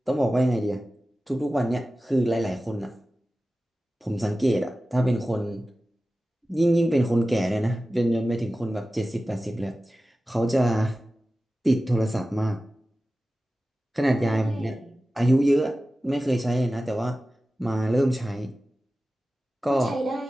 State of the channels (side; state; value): both; normal; correlation 0.95